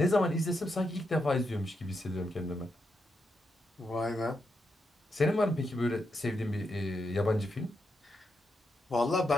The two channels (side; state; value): both; normal; correlation 0.84